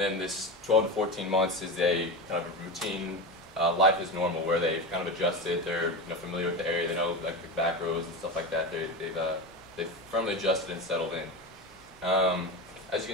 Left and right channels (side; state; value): both; normal; correlation 0.21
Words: this 12 to 14 months is a kind of a routine, life is normal, where they've kind of adjusted, they're familiar with the area, they know like the back roads and stuff like that. They've firmly adjusted and settled in. As you